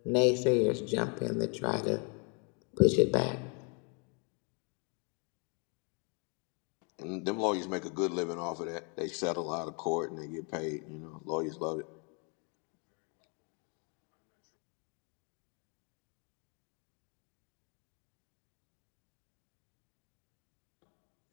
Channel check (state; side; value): quieter; right; 35.8 dB